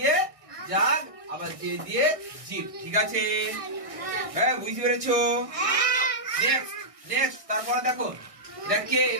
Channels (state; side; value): late; left; 1.6 ms